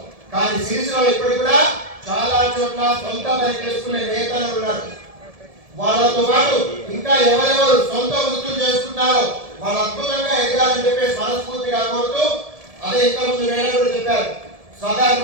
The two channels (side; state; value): left; late; 1.7 ms